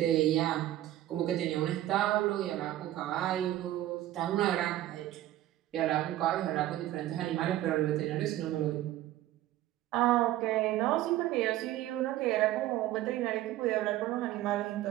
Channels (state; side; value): quieter; left; 14.3 dB